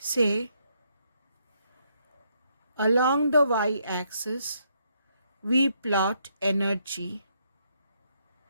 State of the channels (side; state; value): both; inverted; correlation -0.74